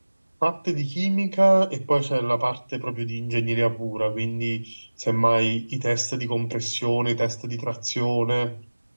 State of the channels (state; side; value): inverted; both; correlation -1.00